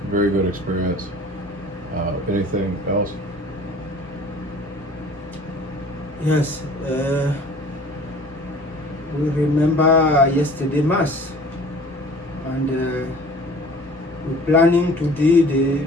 very good experience. Anything else? Yes, we remember yesterday Mass, and we're planning to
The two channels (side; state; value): both; normal; correlation 0.48